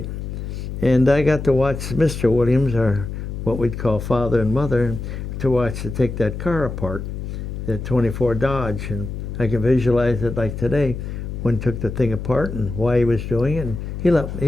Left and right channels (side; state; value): left; noise; hum, 6 dB below the sound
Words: And I got to watch Mr. Williams, or what we'd call father and mother, to take that car apart, the 24 Dodge. And I can visualize it like today, when he took the thing apart and why he was doing it. And he